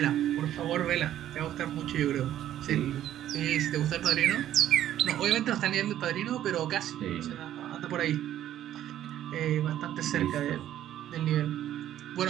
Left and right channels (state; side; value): quieter; left; 11.9 dB